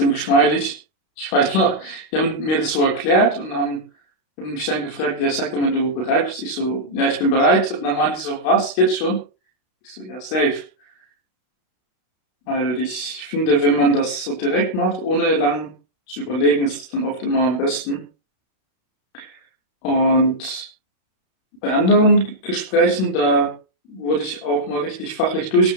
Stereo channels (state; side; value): late; right; 32 ms